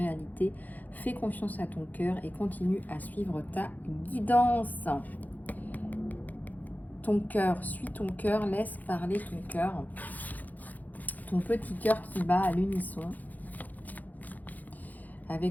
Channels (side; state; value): right; late; 0.081 ms